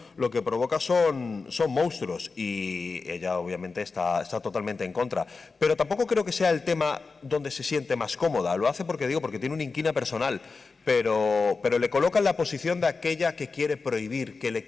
monstruos, y ella obviamente está totalmente en contra. Pero tampoco creo que sea el tema donde se siente más cómoda. Lo hace porque tiene una inquina personal, pero le coloca en la posición de aquella que quiere prohibir, que le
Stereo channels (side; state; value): right; quieter; 4.3 dB